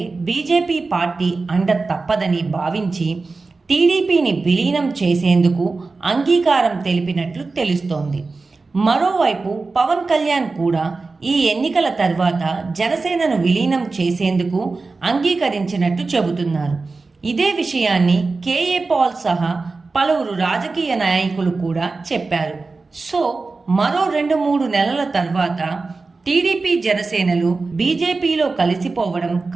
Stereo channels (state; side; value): quieter; left; 3.9 dB